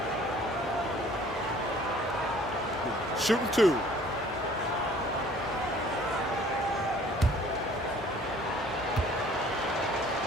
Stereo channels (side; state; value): both; normal; correlation 0.53